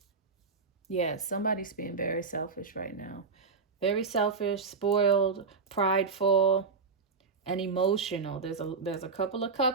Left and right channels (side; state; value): left; quieter; 4.8 dB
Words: yeah, somebody's being very selfish right now. Very selfish, spoiled, prideful, and emotional. There's a couple of